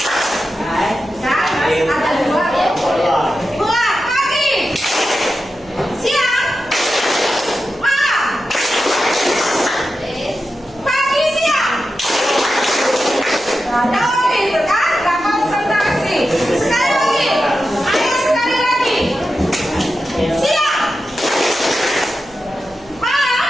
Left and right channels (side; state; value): right; noise; hum, 27 dB below the sound